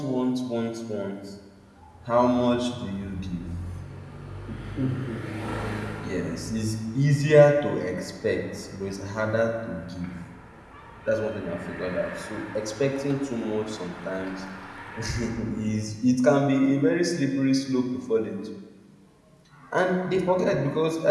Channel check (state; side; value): identical; both; correlation 1.00